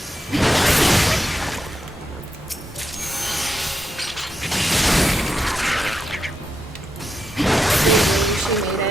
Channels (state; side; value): normal; both; correlation 0.85